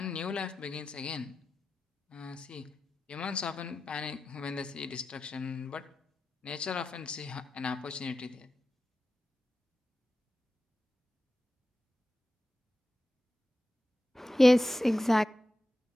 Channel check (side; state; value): both; normal; correlation 0.92